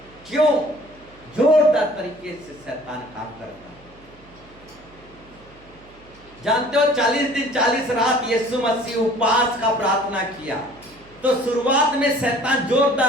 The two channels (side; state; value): right; noise; hum, 25 dB below the sound